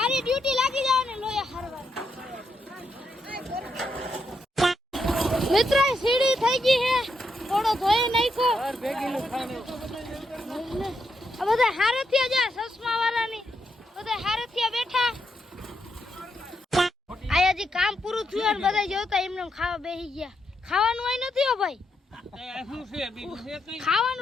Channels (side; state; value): both; normal; correlation 0.81